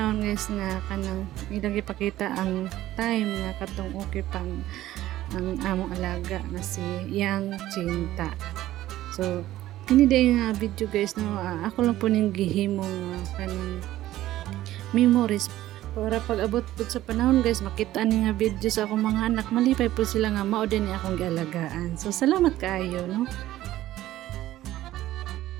guys nga kanang ilang ipakita ang time nga katong okay pang ang among alaga nga si Yang Cinta. So kini day nga video guys no ako lang po ning gihimo kanang memories para pag-abot po sa panahon guys makita ni nga video sa akong mga anak malipay po sila nga mao din ni akong gialagaan. So salamat kaayo no.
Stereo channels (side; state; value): left; quieter; 14.6 dB